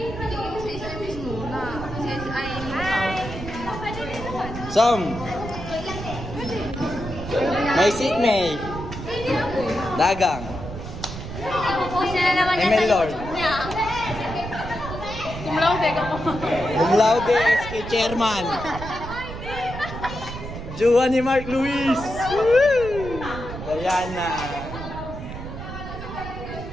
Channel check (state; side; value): noise; right; rumble, 9 dB below the sound